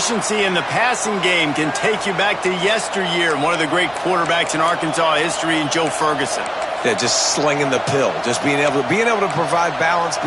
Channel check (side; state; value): both; identical; correlation 1.00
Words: in the passing game can take you back to yesteryear and one of the great quarterbacks in Arkansas history, in Joe Ferguson. Yeah, just slinging the pill, just being able to provide balance,